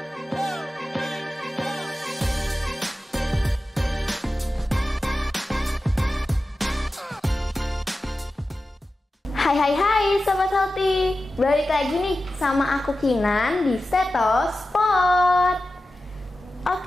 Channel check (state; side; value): normal; both; correlation 0.94